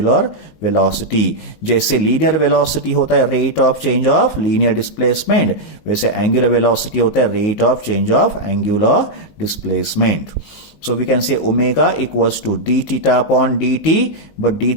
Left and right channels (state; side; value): late; right; 19 ms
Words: वेलोसिटी। जैसे लीनियर वेलोसिटी होता है rate of change of linear displacement, वैसे एंगुलर वेलोसिटी होता है rate of change of angular displacement. So we can say omega equals to d theta upon dt, but d